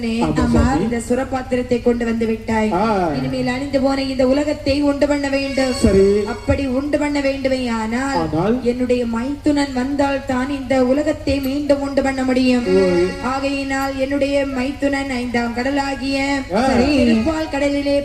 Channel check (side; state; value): both; identical; correlation 1.00